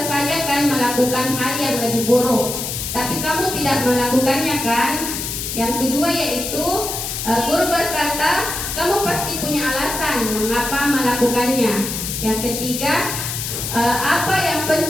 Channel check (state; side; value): noise; left; hiss, 4 dB below the sound